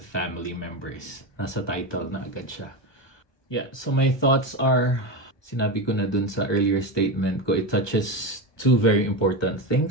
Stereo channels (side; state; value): right; late; 1.2 ms